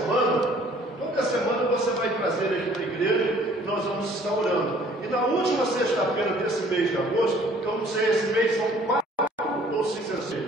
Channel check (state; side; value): normal; both; correlation 0.56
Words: você vai trazer aqui para a igreja e nós vamos estar orando. E na última sexta-feira desse mês de agosto, eu não sei, esse mês são 4 ou 5 ou